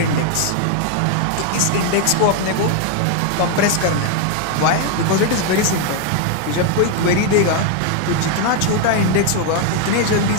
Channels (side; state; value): both; different; correlation 0.01